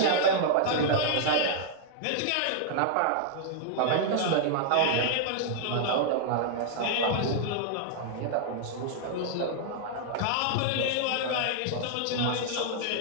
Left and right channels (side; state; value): both; different; correlation -0.01